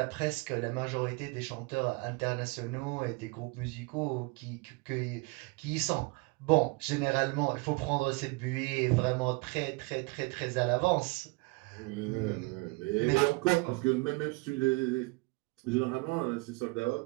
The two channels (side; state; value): left; quieter; 27.2 dB